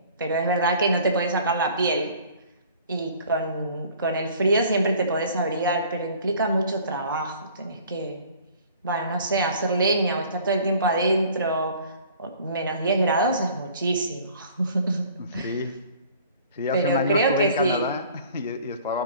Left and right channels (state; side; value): inverted; both; correlation -0.50